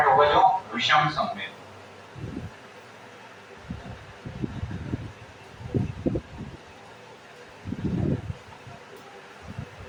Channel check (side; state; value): both; identical; correlation 1.00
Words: होगा जो विषम सम्मिलित।